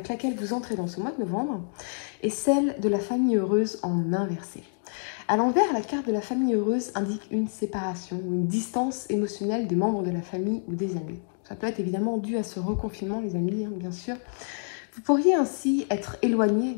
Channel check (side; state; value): right; silent; digital silence